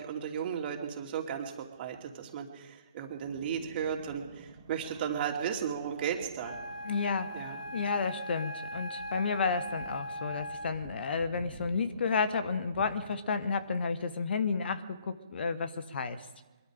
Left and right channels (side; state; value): both; inverted; correlation -0.58